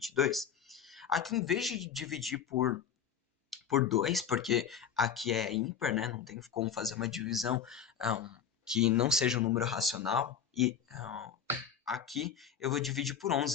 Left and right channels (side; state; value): right; quieter; 7.8 dB